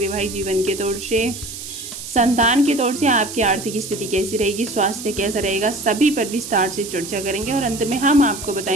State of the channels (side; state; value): right; noise; hiss, 10 dB below the sound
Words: जीवन के तौर से, संतान के तौर से आपकी आर्थिक स्थिति कैसी रहेगी, स्वास्थ्य कैसा रहेगा, सभी पर विस्तार से चर्चा करेंगे और अंत में हम आपको